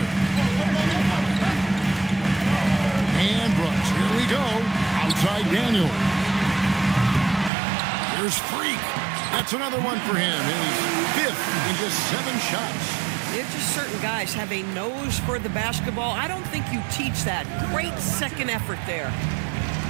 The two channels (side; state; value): left; drops out; at 7.5 s